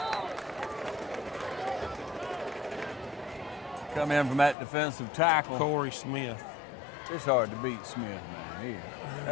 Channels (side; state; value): right; drops out; at 4.5 s